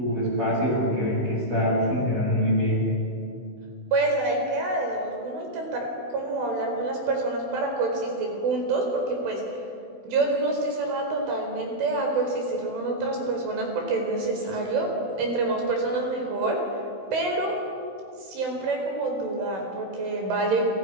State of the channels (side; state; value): left; late; 16 ms